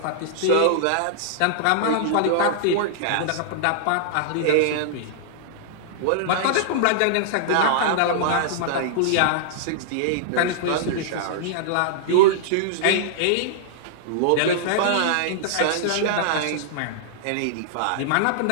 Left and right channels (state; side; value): different; both; correlation -0.01